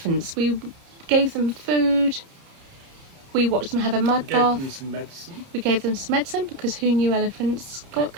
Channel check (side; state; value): left; late; 31 ms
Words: We gave them food. We watched them have a mud Gave bath. them some medicine. We gave them some medicine because who knew elephants got